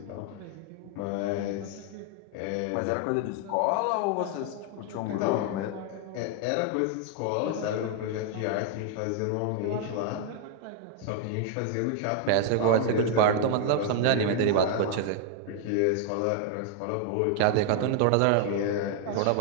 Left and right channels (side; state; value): both; different; correlation 0.00